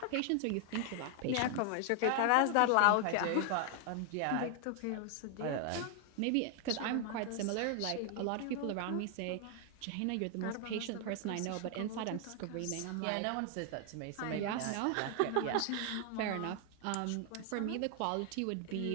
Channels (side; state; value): both; different; correlation 0.00